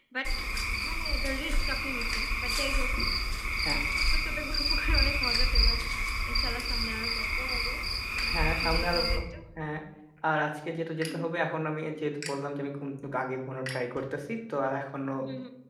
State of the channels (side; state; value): both; identical; correlation 1.00